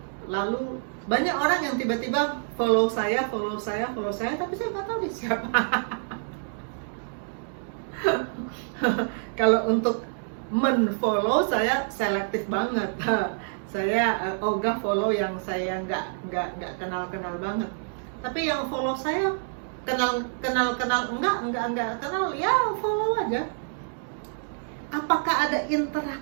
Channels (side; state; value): left; silent; digital silence